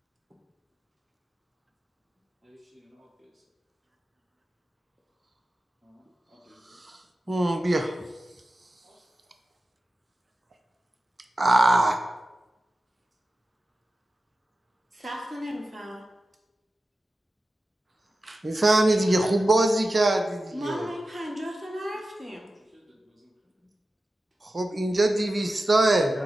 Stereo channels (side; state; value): both; normal; correlation 0.93